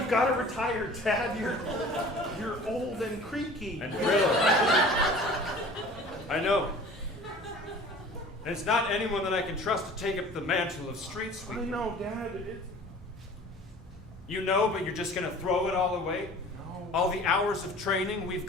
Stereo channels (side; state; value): both; normal; correlation 0.45